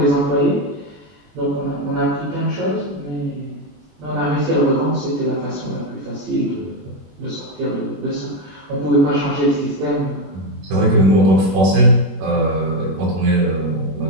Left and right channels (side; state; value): left; late; 21 ms